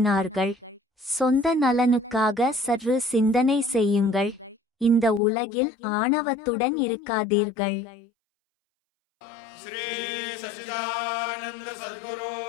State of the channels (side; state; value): right; drops out; at 5.2 s